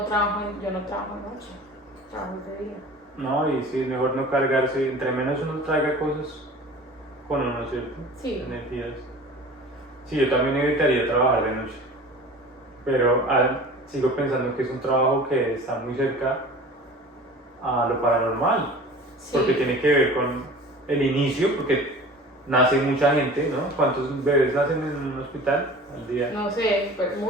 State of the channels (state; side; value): normal; both; correlation 0.40